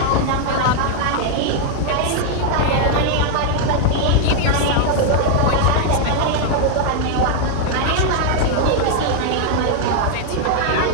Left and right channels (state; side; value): different; both; correlation 0.00